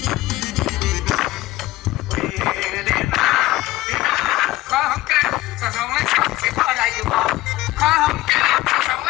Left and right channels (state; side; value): quieter; right; 17.2 dB